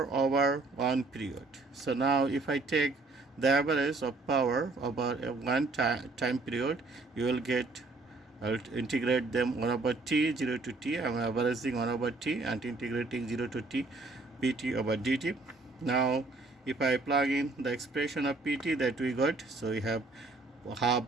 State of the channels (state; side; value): quieter; left; 3.5 dB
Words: over one period. So now if I take the average of power over a one time period, you will get, I'll integrate them 1 over t, 0 to t. I'm averaging 1 over t and integrating 0 to t, pt over dt. Now if I plug in the expression of pt that we got, so we have half